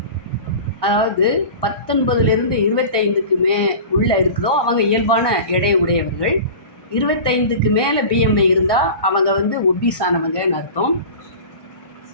அதாவது 19லேருந்து 25க்கு உள்ளே இருக்குதோ அவங்க இயல்பான எடை உடையவர்கள். 25க்கு மேலே பிஎம்ஐ இருந்தால் அவங்க ஒபீஸானவங்கன்னு அர்த்தம்.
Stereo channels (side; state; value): right; late; 1.2 ms